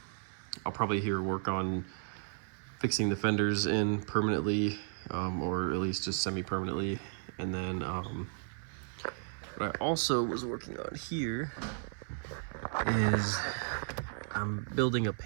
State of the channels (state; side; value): silent; left; 55 dB below the other